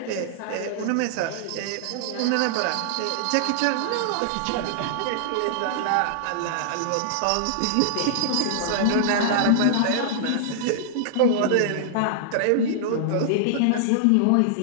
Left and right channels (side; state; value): both; different; correlation -0.01